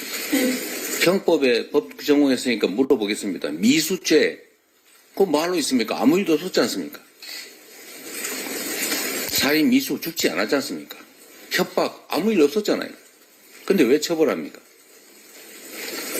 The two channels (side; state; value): both; identical; correlation 1.00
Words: 형법에 법 전공했으니까 물어보겠습니다. 미수죄, 그거 뭐하러 있습니까? 아무 일도 없었지 않습니까? 살인 미수 죽지 않았지 않습니까? 협박 아무 일 없었잖아요. 근데 왜 처벌합니까?